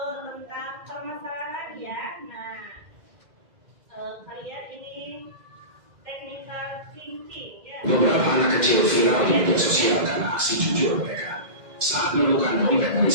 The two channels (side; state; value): left; late; 2.0 ms